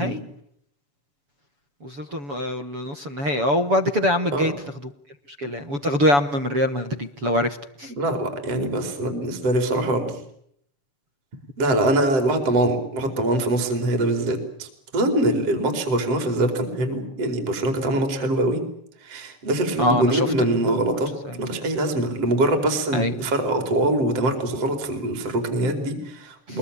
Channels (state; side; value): late; left; 7.6 ms